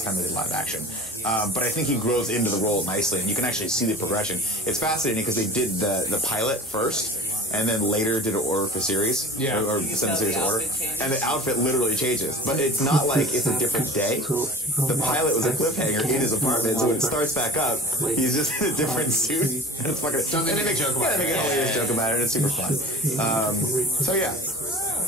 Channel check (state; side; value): normal; both; correlation 0.40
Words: time they did live action. But I think he grows into the role nicely, and you can actually see the progression. It's fascinating because they did the pilot first, and then later did an order for series, Yeah. or send the series order, and the outfit literally changes. But it's not like it's a different day. The pilot was a cliffhanger in his apartment, so when it starts back up, he's just in a different suit, and it's fucking. Don't they and make a joke about they make a hilarious joke about it, and it's super fun. So yeah,